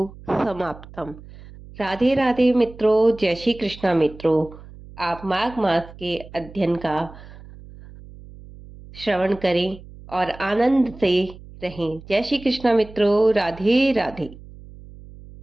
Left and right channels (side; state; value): right; noise; hum, 18 dB below the sound